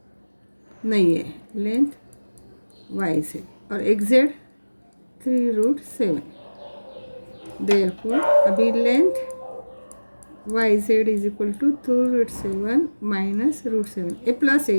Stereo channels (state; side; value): inverted; both; correlation -1.00